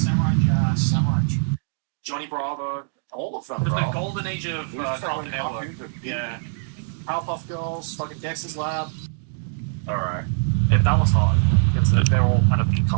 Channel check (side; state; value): left; silent; digital silence